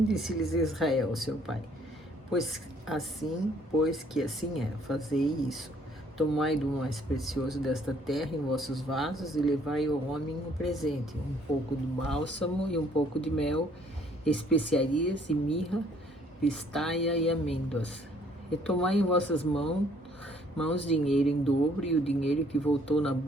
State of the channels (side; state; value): both; normal; correlation 0.62